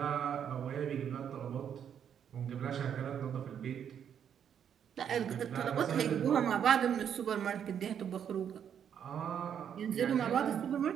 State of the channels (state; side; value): quieter; left; 8.6 dB